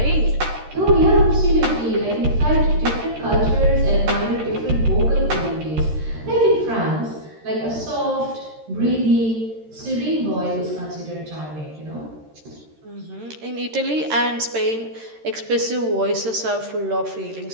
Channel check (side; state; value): left; late; 13 ms